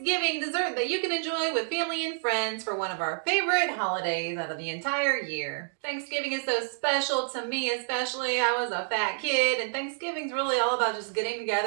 dessert that you can enjoy with family and friends for one of our favorite holidays out of the entire year. Thanksgiving is so special to me, especially. I was a fat kid, and Thanksgiving's really all about just getting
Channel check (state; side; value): silent; left; digital silence